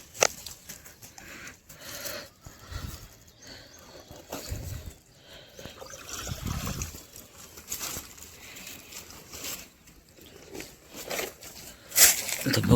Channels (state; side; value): identical; both; correlation 1.00